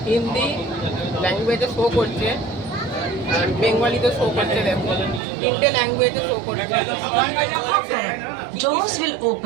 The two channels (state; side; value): drops out; left; at 5.2 s